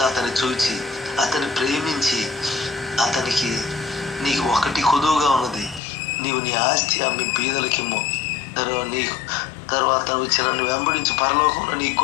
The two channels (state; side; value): drops out; right; at 5.8 s